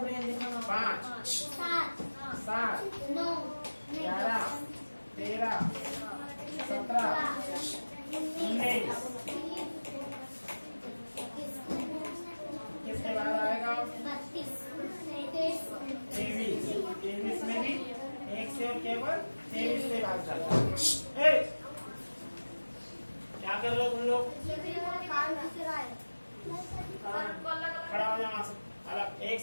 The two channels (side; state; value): both; inverted; correlation -1.00